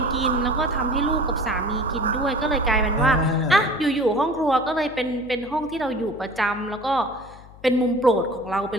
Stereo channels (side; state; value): left; noise; hum, 20 dB below the sound